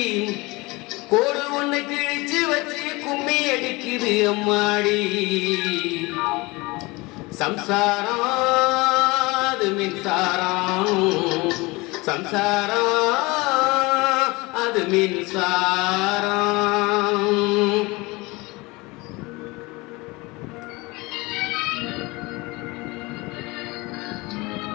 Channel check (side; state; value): right; quieter; 23.7 dB